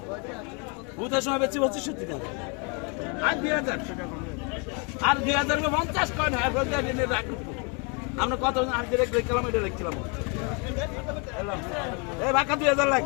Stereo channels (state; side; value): quieter; right; 34.4 dB